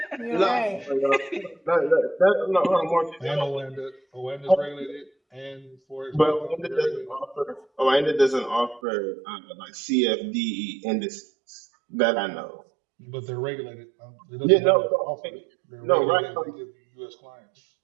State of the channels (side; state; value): left; drops out; at 8.8 s